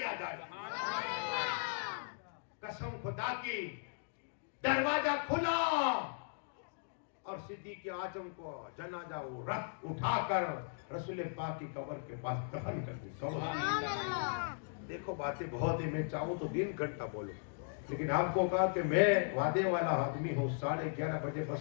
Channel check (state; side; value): silent; right; digital silence